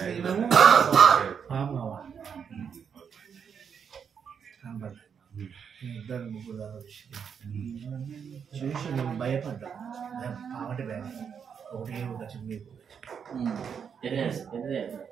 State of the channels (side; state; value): left; quieter; 7.1 dB